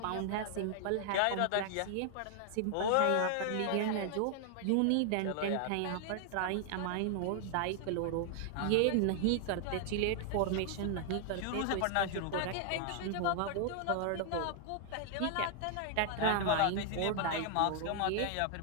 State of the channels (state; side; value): different; both; correlation 0.00